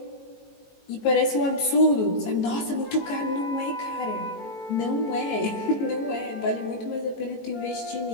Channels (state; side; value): late; right; 18 ms